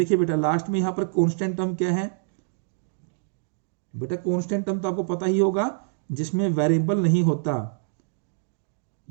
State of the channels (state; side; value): silent; left; digital silence